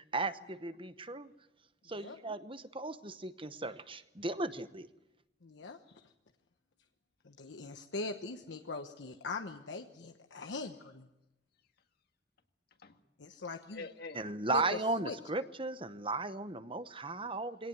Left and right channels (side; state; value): both; normal; correlation 0.01